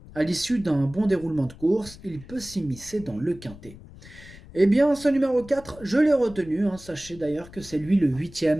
À l'issue d'un bon déroulement de course, il peut s'immiscer dans le quintet. Eh bien, ce numéro 4, je l'ai retenu. Sachez d'ailleurs que c'est lui le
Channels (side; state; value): left; noise; rumble, 19 dB below the sound